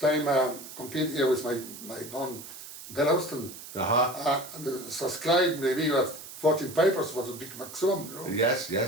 I competed here with my band, Bill Austin. And subscribed maybe with 14 pipers was a big maximum, Yes.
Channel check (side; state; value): right; noise; hiss, 13 dB below the sound